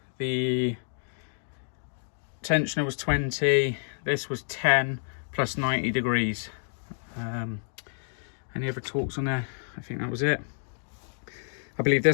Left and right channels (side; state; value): right; silent; digital silence